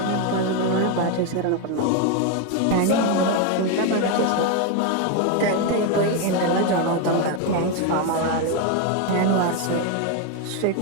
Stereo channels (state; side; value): different; both; correlation 0.02